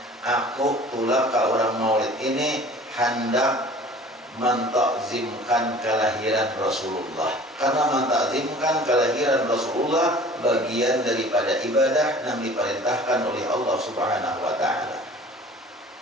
Aku tulak ke orang maulid ini hendak mentakzimkan kelahiran Rasulullah. Karena mentakzimkan kelahiran Rasulullah bagian daripada ibadah yang diperintahkan oleh Allah Subhanahu wa taala.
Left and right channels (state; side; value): normal; both; correlation 0.46